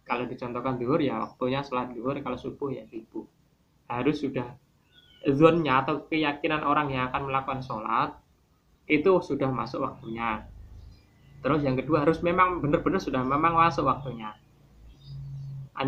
Kalau dicontohkan zuhur ya waktunya sholat zuhur, kalau subuh ya subuh. Harus sudah zonnya atau keyakinan orang yang akan melakukan sholat itu sudah masuk waktunya. Terus yang kedua harus memang benar-benar sudah memang masuk waktunya.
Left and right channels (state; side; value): identical; both; correlation 1.00